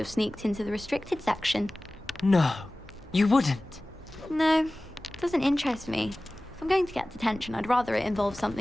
sneaked into the restricted section. No, you wouldn't. No, it doesn't interest me. If I'm going to get detention, I'd rather it involve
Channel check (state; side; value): normal; both; correlation 0.98